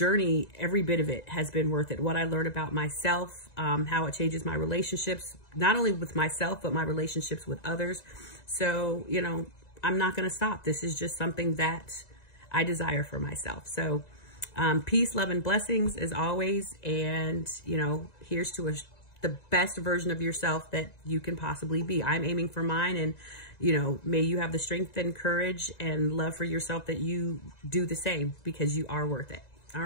every bit of it has been worth it. What I learned about myself, how it changes my relationships, not only with myself, but my relationships with others. So, you know, I'm not going to stop. This is just something that I desire for myself. So, peace, love, and blessings as always. And, you know, here's to the best version of yourself that you can possibly be. I'm aiming for mine, and, you know, may you have the strength and courage and love for yourself that you do the same, because you are worth it. All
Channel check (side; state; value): right; late; 1.9 ms